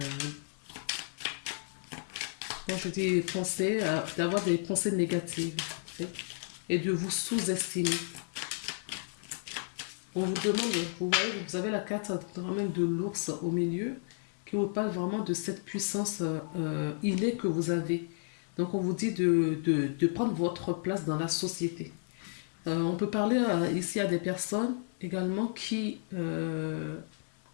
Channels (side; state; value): right; silent; 56 dB below the other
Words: quand je dis penser, d'avoir des pensées négatives. Et de vous sous-estimer. On vous demande, vous voyez, vous avez la carte même de l'ours au milieu qui vous parle vraiment de cette puissance innée que vous avez. Donc on vous dit de prendre votre place dans la société. On peut parler ici à des personnes également qui n'aiment